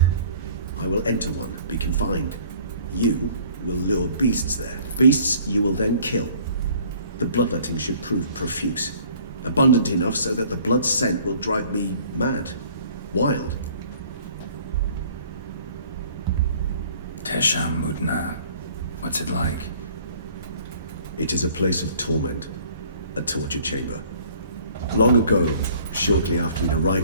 I will enter one, be confined. You will lure beasts there. Beasts you will then kill. The bloodletting should prove profuse. Abundant enough so that the blood scent will drive me mad. Wild. Teshamudna. What's it like? It is a place of torment. A torture chamber. Long ago, shortly after we'd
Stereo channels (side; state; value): both; inverted; correlation -0.53